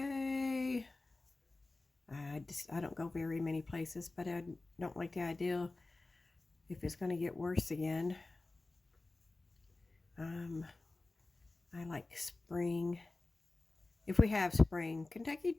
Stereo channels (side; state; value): right; quieter; 3.2 dB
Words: I don't go very many places, but I don't like the idea if it's going to get worse again. I like spring. If we have spring, Kentucky